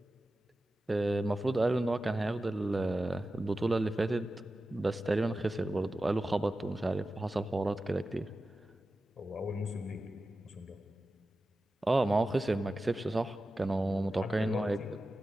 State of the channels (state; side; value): normal; both; correlation 0.93